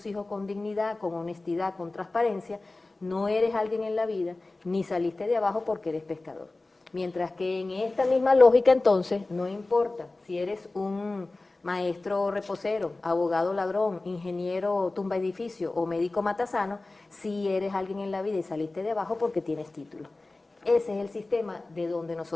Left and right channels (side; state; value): right; quieter; 3.1 dB